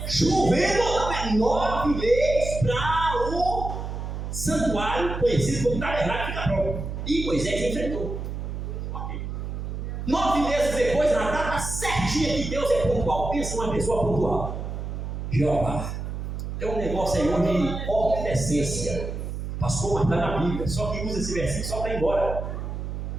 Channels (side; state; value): right; noise; hum, 5 dB below the sound